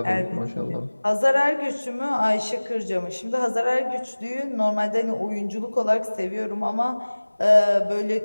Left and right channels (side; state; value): both; inverted; correlation -1.00